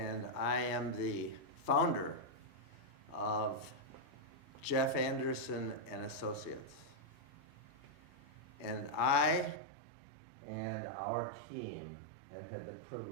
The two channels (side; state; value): left; drops out; at 9.6 s